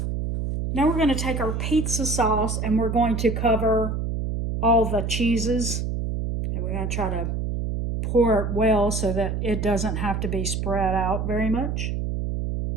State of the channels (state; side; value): noise; right; hum, 2 dB below the sound